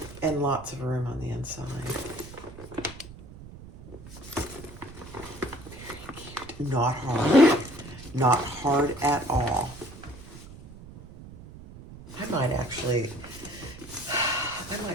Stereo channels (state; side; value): noise; right; rumble, 16 dB below the sound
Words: and lots of room on the inside. Very cute. Not hard at all. I might